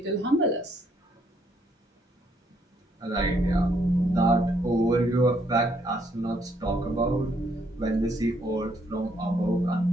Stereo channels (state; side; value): normal; both; correlation 0.71